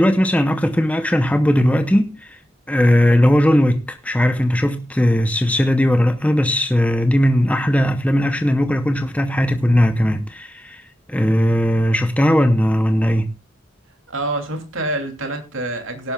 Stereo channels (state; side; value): normal; both; correlation 0.91